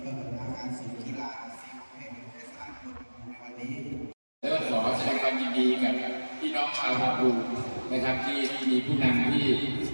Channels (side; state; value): both; inverted; correlation -1.00